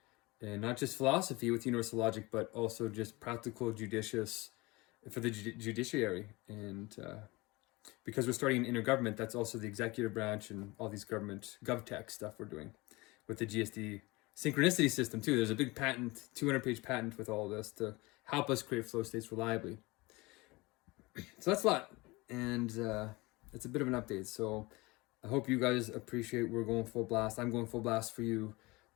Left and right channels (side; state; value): right; quieter; 23.3 dB